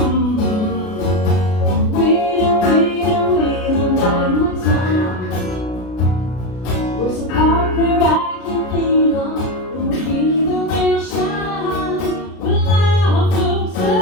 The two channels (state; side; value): late; right; 33 ms